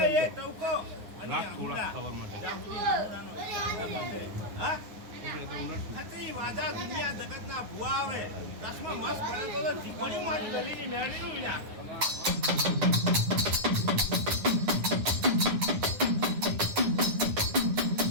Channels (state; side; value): late; left; 9.5 ms